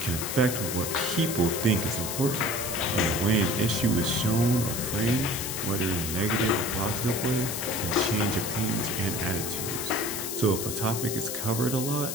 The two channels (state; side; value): noise; left; hiss, 4 dB below the sound